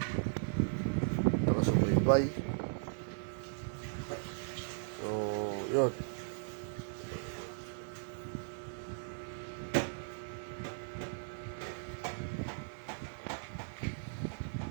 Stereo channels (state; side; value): silent; left; 53 dB below the other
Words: nakasubaybay. So, yun.